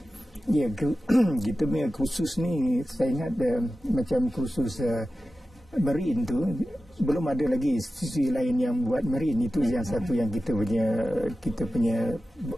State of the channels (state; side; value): normal; both; correlation 0.94